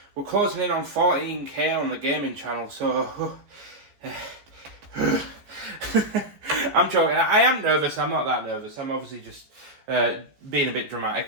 we're closing in on 14k on the gaming channel. So I'm joking. I am nervous. I'm not that nervous. I'm obviously just being a bit dramatic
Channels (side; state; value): left; late; 14 ms